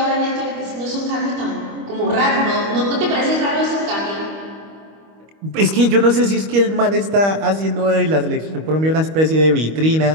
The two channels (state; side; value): late; left; 25 ms